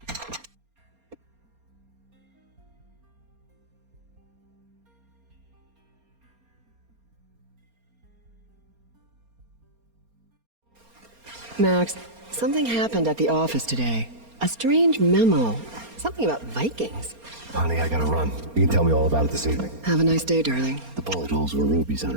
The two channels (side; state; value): left; late; 4.3 ms